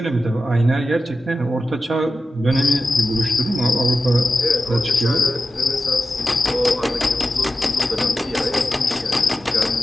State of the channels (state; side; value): normal; both; correlation 0.92